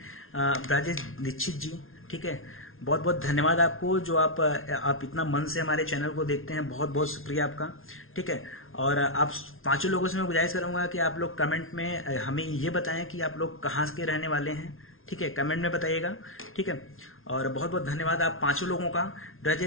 राजेश दीक्षित जी, ठीक है, बहुत बहुत धन्यवाद आपको, जो आप इतना मन से हमारे चैनल को देखते हैं, बहुत बहुत शुक्रिया आपका, ठीक है। और आप 5 लोगों से मैं गुजारिश करूंगा कि आप लोग कमेंट में हमें ये बताएं कि आप लोग कहाँ के रहने वाले हैं, ठीक है, कमेंट में बताइएगा, ठीक है। और बहुत बहुत धन्यवाद आप 5 लोगों का।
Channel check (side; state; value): right; late; 0.61 ms